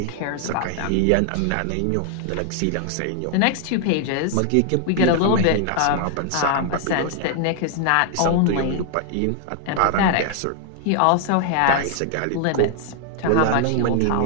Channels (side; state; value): both; different; correlation 0.00